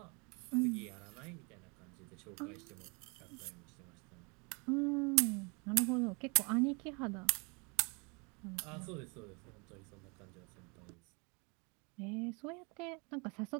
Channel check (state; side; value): quieter; left; 31.7 dB